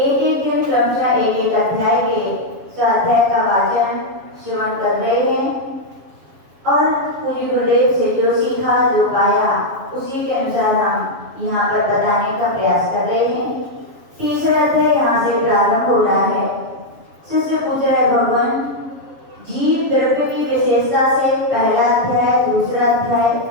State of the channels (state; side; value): late; left; 7.2 ms